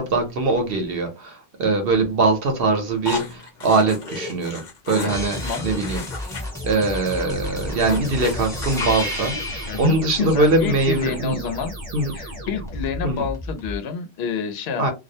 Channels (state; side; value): normal; both; correlation -0.04